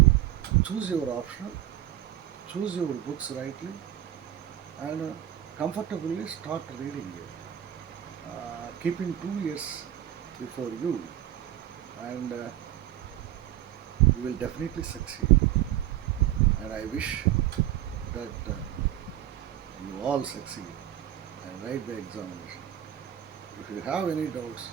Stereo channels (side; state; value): left; quieter; 12.4 dB